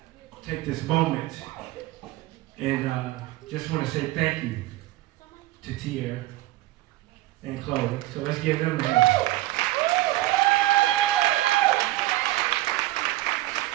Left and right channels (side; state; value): left; quieter; 17.4 dB